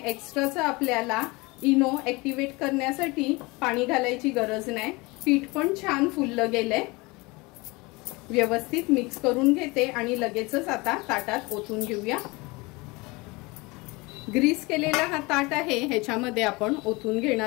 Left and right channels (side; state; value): right; quieter; 24.6 dB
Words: आपल्याला इनो ऍक्टिव्हेट करण्यासाठी पाणी घालायची गरज नाही। पीठ पण छान फुललं गेलंय। व्यवस्थित मिक्स करून घेते आणि लगेचच आता ताटात ओतून घेऊया। ग्रीस केलेला हा ताट आहे, ह्याच्यामध्ये आपण ओतून